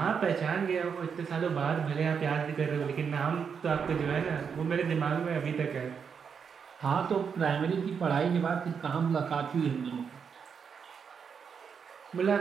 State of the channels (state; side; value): quieter; left; 6.5 dB